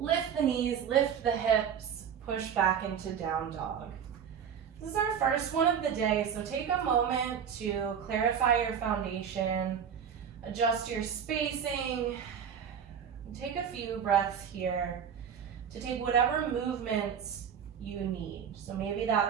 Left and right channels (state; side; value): quieter; left; 7.8 dB